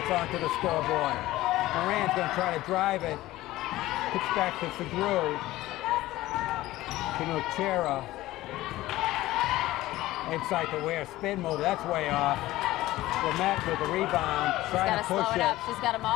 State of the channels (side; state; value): right; quieter; 16.7 dB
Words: onto the scoreboard. Moran's going to try to drive it. Kicks back to Segru. To Nochera. Inside the wear. Spin move. That's way off. Lamette with the rebound. Trying to push slow it up. She's got them